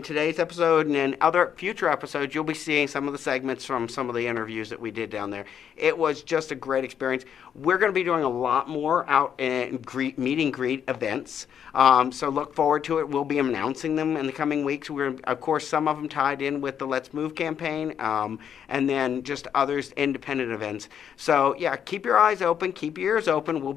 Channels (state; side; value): quieter; right; 8.5 dB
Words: today's episode and in other future episodes, you'll be seeing some of the segments from some of the interviews that we did down there. It was just a great experience. We're going to be doing a lot more out in meet and greet events. So look forward to it. We'll be announcing them in the coming weeks. Of course, some of them tied in with the Let's Move campaign, and then just others independent events. So yeah, keep your eyes open, keep your ears open. We'll